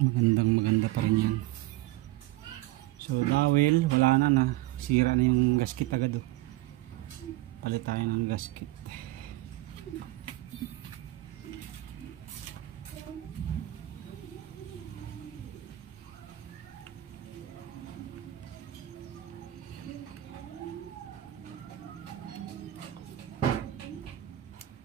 Maganda pa rin yan. So dahil wala na sira na yung gasket agad oh. Palit tayo ng gasket.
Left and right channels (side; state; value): left; quieter; 16.9 dB